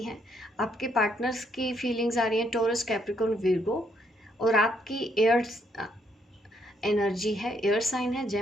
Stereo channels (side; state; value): both; normal; correlation 0.73